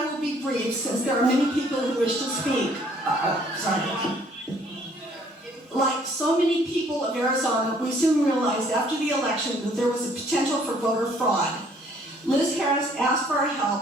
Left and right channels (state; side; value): normal; both; correlation 0.61